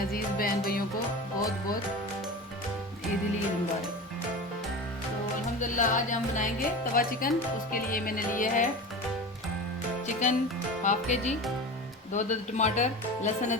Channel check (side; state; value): both; normal; correlation 0.30